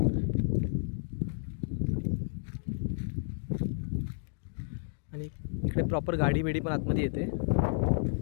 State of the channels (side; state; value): right; silent; digital silence